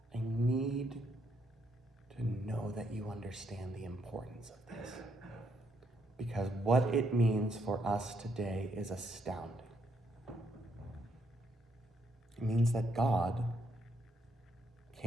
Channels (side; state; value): both; normal; correlation 0.75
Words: I need to know that you understand the importance of this, because what it means for us today is astounding. It means that God